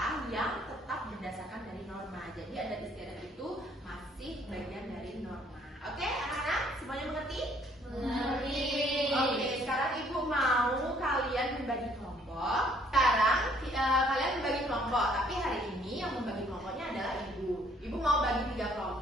yang tetap berdasarkan dari norma. Jadi adat istiadat itu masih bagian dari norma. Oke, anak-anak semuanya mengerti? Mengerti. Oke, sekarang Ibu mau kalian membagi kelompok. Sekarang kalian membagi kelompok, tapi hari ini yang membagi kelompoknya adalah Ibu. Ibu mau bagi 3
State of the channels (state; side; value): normal; both; correlation 0.63